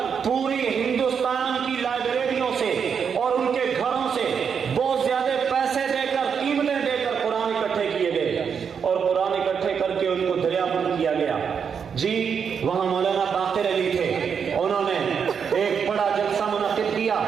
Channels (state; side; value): quieter; left; 6.8 dB